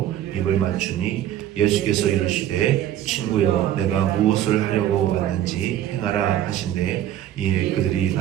입을 맞추니 예수께서 이르시되 친구여 내가 무엇을 하려고 왔는지 행하라 하신대 이에 그들이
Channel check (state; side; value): quieter; left; 11.8 dB